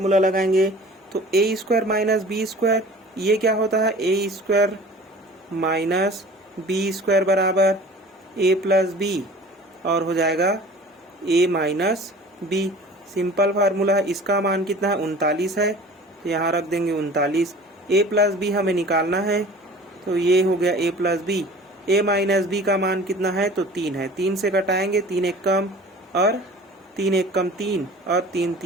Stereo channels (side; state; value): both; normal; correlation 0.43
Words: लगाएंगे? तो ए स्क्वायर माइनस बी स्क्वायर, ये क्या होता है? A square minus b square बराबर ए प्लस बी, और हो जाएगा ए माइनस बी। सिंपल फार्मूला है। इसका मान कितना है? 39 है, तो यहाँ रख देंगे 39। ए प्लस बी हमें निकालना है, तो ये हो गया ए प्लस बी। ए माइनस बी का मान कितना है? तो 3 है। 3 से घटाएंगे, 3 एक कम और 3 एक कम 3 और 3